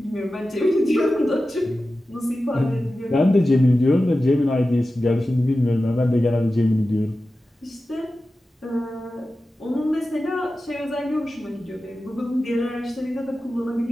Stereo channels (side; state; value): both; normal; correlation 0.94